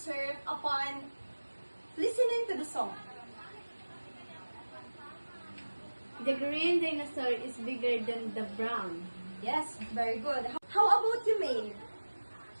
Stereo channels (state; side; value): inverted; both; correlation -1.00